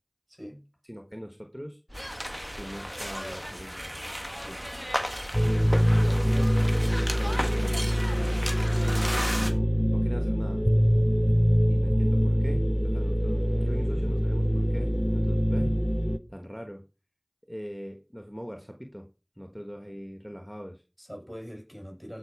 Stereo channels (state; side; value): identical; both; correlation 1.00